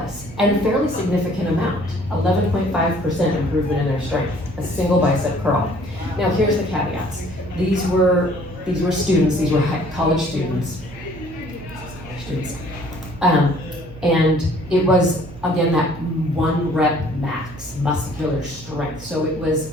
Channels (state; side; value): noise; right; hum, 16 dB below the sound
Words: and a fairly significant amount, 11.5% improvement in their strength, a single bicep curl. Now here's the caveats. These were students, these were college students. And it was, again, that 1 rep max muscular strength, so it was